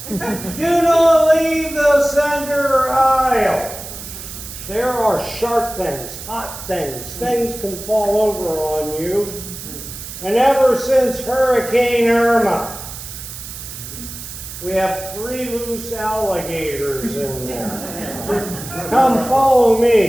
Do not leave the center aisle. There are sharp things, hot things. Things can fall over on you. And ever since Hurricane Irma, we have 3 loose alligators in there. Come follow me.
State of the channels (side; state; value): right; noise; hiss, 11 dB below the sound